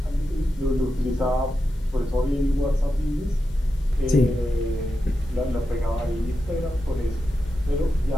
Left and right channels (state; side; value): normal; both; correlation 0.89